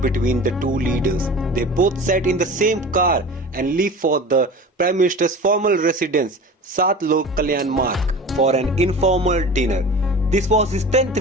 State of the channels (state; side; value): normal; both; correlation 0.36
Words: the two leaders. They both sat in the same car and left for the Prime Minister's formal residence, Sat Lok Kalyan Marg, for an informal dinner. This was his 10th